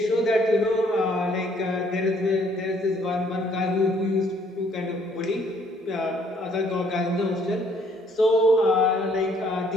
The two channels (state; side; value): normal; both; correlation 0.64